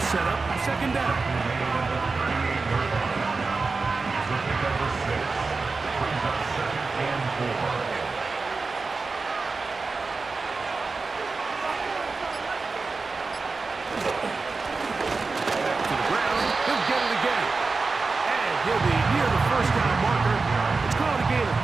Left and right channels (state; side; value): quieter; left; 4.1 dB